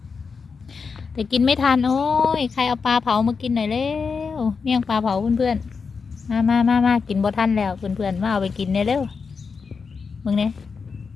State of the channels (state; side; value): quieter; right; 5.3 dB